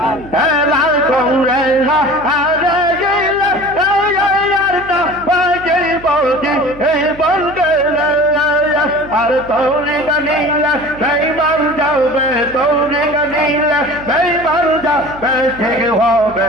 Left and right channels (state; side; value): noise; right; hum, 18 dB below the sound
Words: লাল করে আরে গেলে আর না বাজে বলছি এই বলকে আর তোরে গানিলা সেই মার যাবে তোরে গানিলা সেই মার যাবে ঠিক হবে